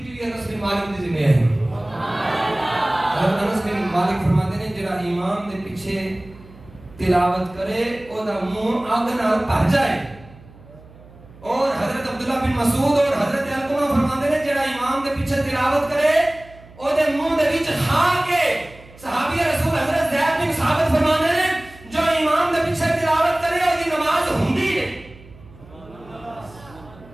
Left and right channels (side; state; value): right; noise; hum, 22 dB below the sound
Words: بھی انس بن مالک دی ذمہ ہے۔ حضرت انس بن مالک فرماتے ہیں جڑا امام دے پیچھے تلاوت کرے او دا منہ اگ نال بھر جائے، اور حضرت عبداللہ بن مسعود اور حضرت علقمہ فرماتے ہیں جڑا امام دے پیچھے تلاوت کرے او دے منہ دے وچ کھا کے، صحابی رسول حضرت زید بن ثابت فرماتے ہیں جو امام دے پیچھے تلاوت کرے او دی نماز ہوندی ہے۔